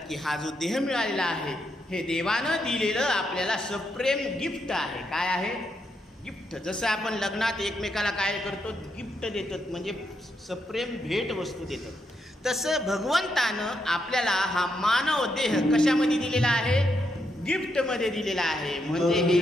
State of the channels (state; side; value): normal; both; correlation 0.81